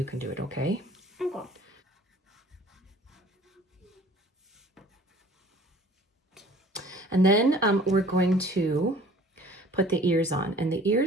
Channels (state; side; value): normal; both; correlation 0.51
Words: can do it, okay? Okay. And then we're going to put the ears on. And the